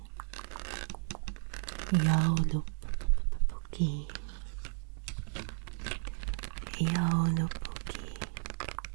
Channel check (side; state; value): left; silent; 55 dB below the other